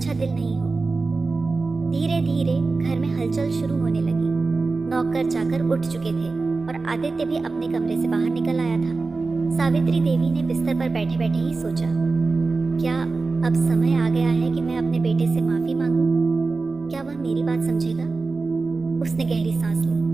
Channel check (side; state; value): left; quieter; 3.8 dB